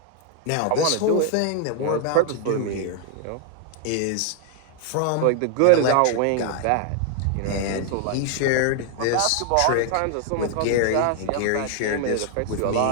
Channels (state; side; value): different; both; correlation 0.00